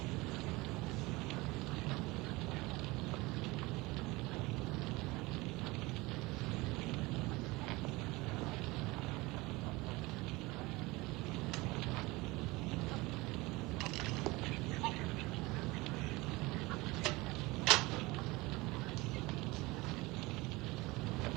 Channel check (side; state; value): left; quieter; 22.3 dB